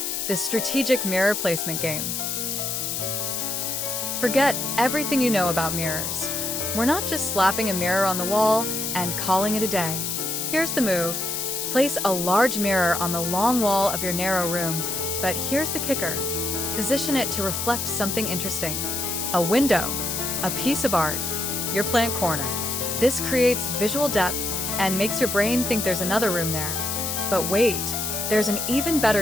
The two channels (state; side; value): noise; left; hiss, 2 dB below the sound